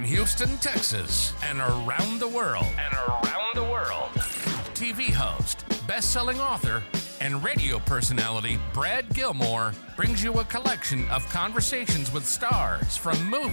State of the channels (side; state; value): both; inverted; correlation -1.00